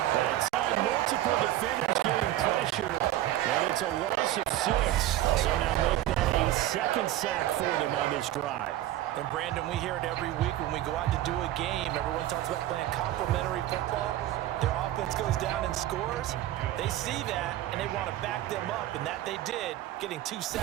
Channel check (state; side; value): quieter; left; 14.0 dB